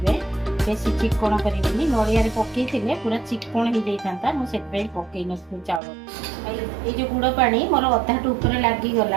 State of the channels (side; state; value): left; drops out; at 5.8 s